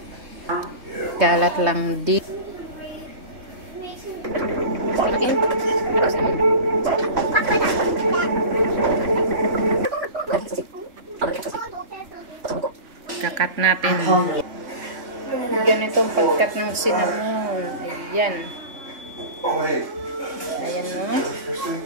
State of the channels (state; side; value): late; left; 3.1 ms